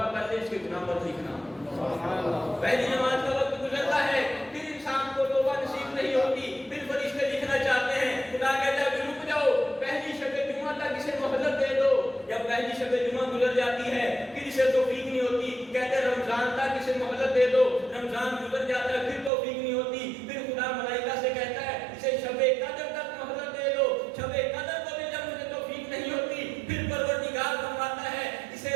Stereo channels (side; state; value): left; drops out; at 19.3 s